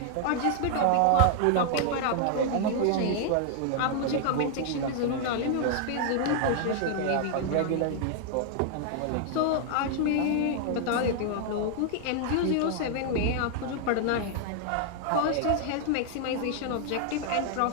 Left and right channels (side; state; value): both; different; correlation 0.00